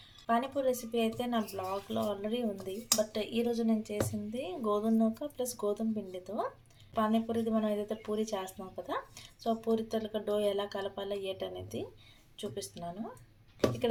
పానీపూరి రెసిపీ అయితే నా బ్లాగ్లో ఆల్రెడీ ఉంది. బట్ ఈరోజు నేను చేసింది గోధుమ నూక ప్లస్ గోధుమ పిండితో పానీపూరిది. మనం ఏదైతే పూరి చేస్తున్నాం కదా, సో పూరి తలక డో ఎలా కలపాలో ఏటనేది చూపిస్తున్నాను.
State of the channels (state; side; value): identical; both; correlation 1.00